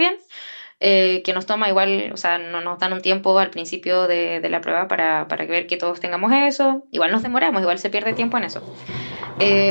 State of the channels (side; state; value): both; inverted; correlation -1.00